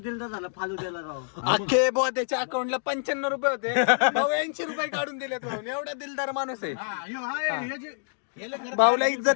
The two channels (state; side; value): silent; right; digital silence